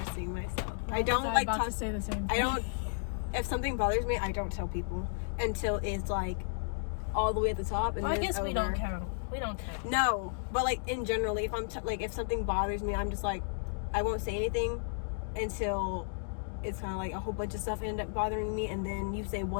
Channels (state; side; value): silent; right; digital silence